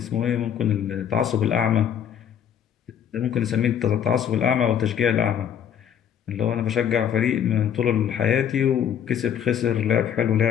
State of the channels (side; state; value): right; quieter; 9.0 dB